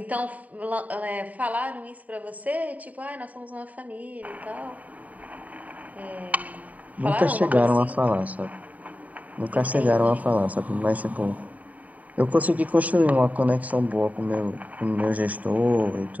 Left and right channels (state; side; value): late; left; 0.073 ms